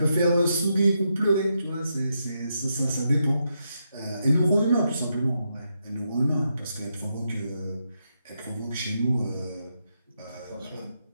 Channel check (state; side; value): inverted; both; correlation -0.82